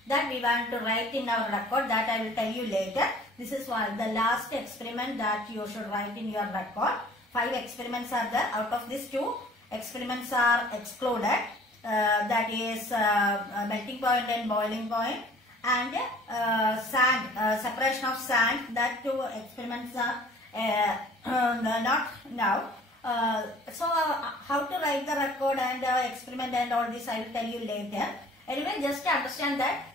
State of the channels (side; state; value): both; normal; correlation 0.51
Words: that we want to write in our record. That I will tell you later. This is the last experiment that you should write in your record. 5 experiments are there. Out of these 2 experiments are excluded. That is melting point and boiling point, and sand, separation of sand. That 2 experiments are not now. So how to write the record and experiment and all this I will tell you later. Anyway, just to understand that